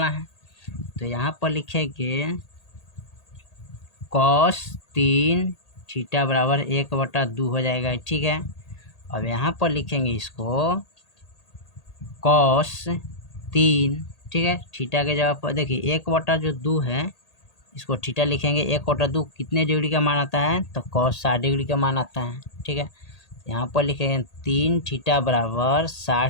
है। तो यहाँ पर लिखेंगे कॉस 3 थीटा बराबर 1/2 हो जाएगा, ठीक है। अब यहाँ पर लिखेंगे इसको कॉस 3, ठीक है, थीटा के जगह पर देखिए 1/2 है, इसको थीटा लिखेंगे। 1/2 कितने डिग्री का मान आता है, तो cos 60 डिग्री का मान आता है, ठीक है। यहाँ पर लिखेंगे 3 थीटा बराबर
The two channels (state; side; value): late; right; 1.8 ms